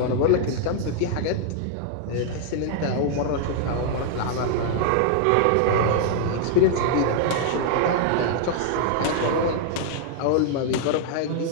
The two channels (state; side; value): different; both; correlation -0.01